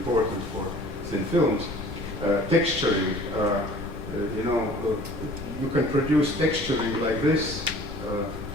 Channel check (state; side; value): normal; both; correlation 0.49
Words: for thin films. Texturing, you can produce texturing like this